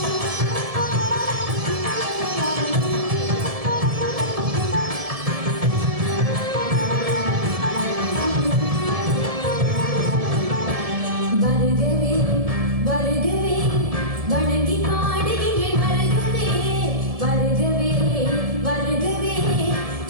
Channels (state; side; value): late; left; 1.7 ms